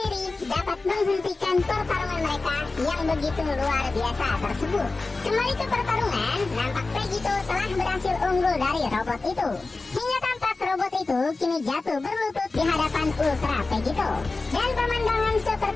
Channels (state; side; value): quieter; right; 3.5 dB